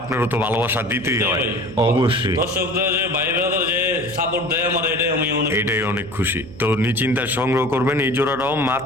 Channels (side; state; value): right; noise; hum, 16 dB below the sound